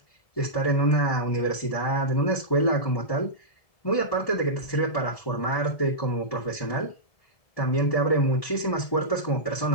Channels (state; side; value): late; right; 1.7 ms